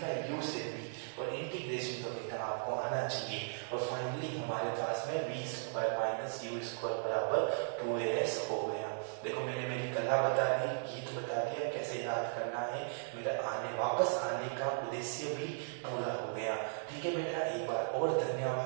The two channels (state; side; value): silent; left; digital silence